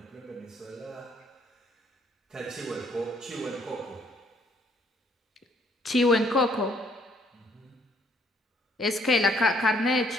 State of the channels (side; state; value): both; normal; correlation 0.65